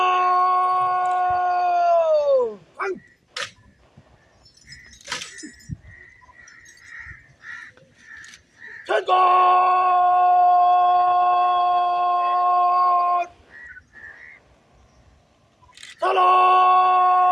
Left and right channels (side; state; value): both; identical; correlation 1.00